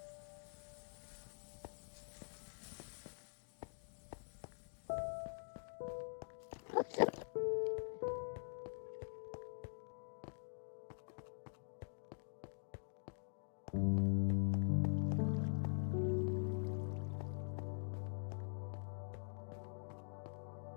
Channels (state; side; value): silent; right; digital silence